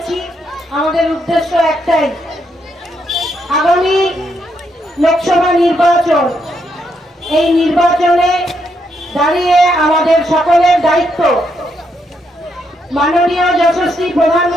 আমাদের উদ্দেশ্য একটাই, আগামী লোকসভা নির্বাচন। এই নির্বাচনে দাঁড়িয়ে আমাদের সকলের দায়িত্ব মাননীয় যশস্বী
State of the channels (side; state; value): both; normal; correlation 0.78